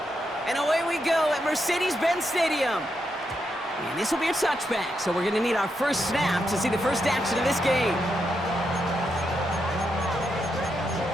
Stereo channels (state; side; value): normal; both; correlation 0.83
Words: And away we go at Mercedes-Benz Stadium. And this will be a touchback, so we're going to need our first snap to see the first action of this game.